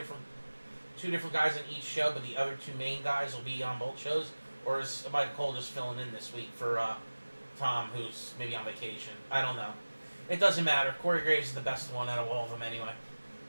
guys on each show, but the other two main guys will be on both shows? Or is Michael Cole just filling in this week for Tom, who's maybe on vacation? I don't know. It doesn't matter. Corey Graves is the best one out of all of them anyway.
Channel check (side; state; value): both; inverted; correlation -1.00